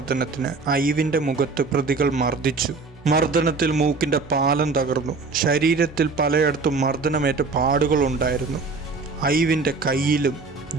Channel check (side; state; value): left; quieter; 4.1 dB